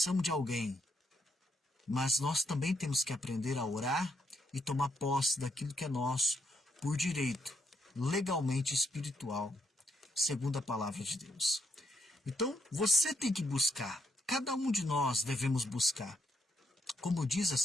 de alguém. Mas nós também temos que aprender a orar e tomar posse daquilo que é nosso por direito, legalmente espiritual, segundo a palavra de Deus. Então, você tem que buscar. Cada um de nós devemos buscar. Como diz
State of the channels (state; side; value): normal; both; correlation 0.78